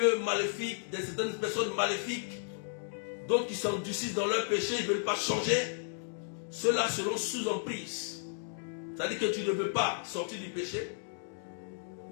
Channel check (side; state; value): right; silent; digital silence